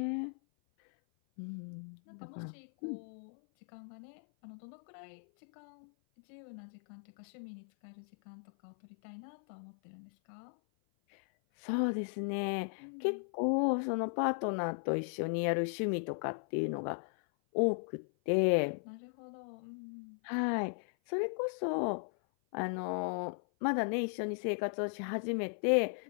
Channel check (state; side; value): silent; right; 53 dB below the other